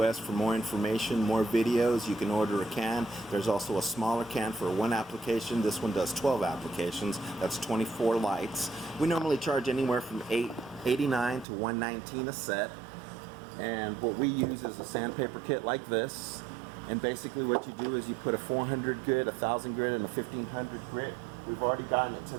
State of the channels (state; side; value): drops out; left; at 11.5 s